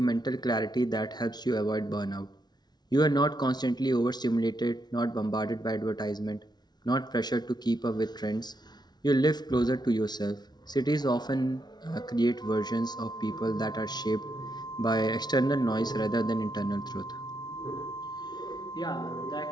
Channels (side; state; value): right; late; 0.20 ms